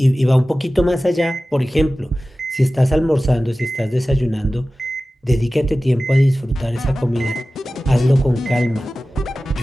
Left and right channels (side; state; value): both; normal; correlation 0.96